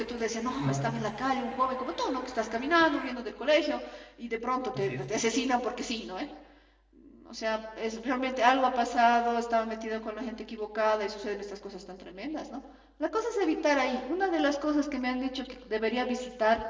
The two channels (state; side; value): identical; both; correlation 1.00